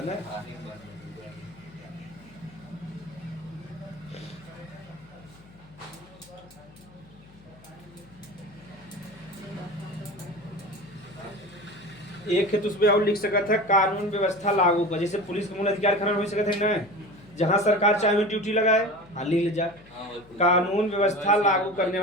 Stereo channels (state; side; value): noise; left; hum, 24 dB below the sound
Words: ना। एक है तो उसमें और लिख सकता है कानून व्यवस्था लागू कर। जैसे पुलिस का मूल अधिकार खनन हो सकता है ना, जहाँ सरकार चाहे ड्यूटी लगाए। हाँ लिख ले जा कानून व्यवस्था लागू करने